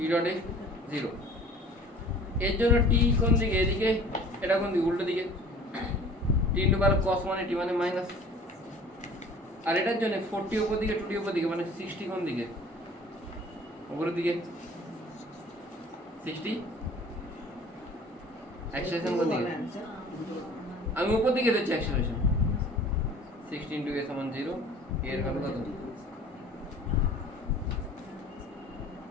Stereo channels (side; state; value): both; normal; correlation 0.47